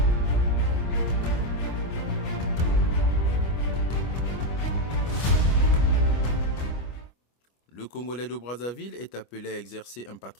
Le Congolais de Brazzaville est appelé à exercer un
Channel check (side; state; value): right; late; 25 ms